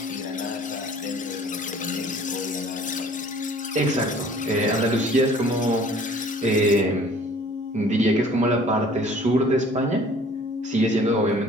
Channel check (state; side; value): normal; both; correlation 0.52